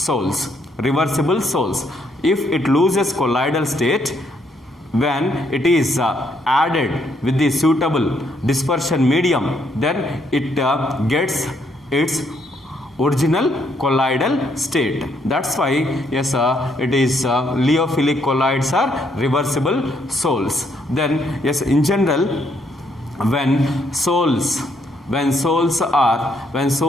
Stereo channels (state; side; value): normal; both; correlation 0.72